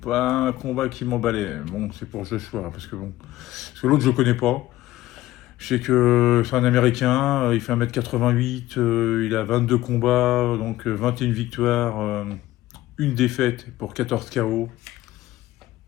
un combat qui m'emballait. Bon, c'est pour Joshua, parce que l'autre je le connais pas. Je sais que c'est un Américain, il fait 1m88, il a 22 combats, donc 21 victoires, une défaite pour 14 KO.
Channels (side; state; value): right; quieter; 15.9 dB